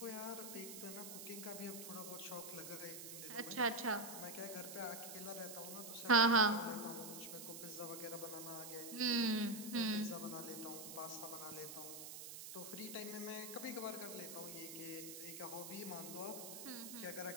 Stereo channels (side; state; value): right; noise; hiss, 9 dB below the sound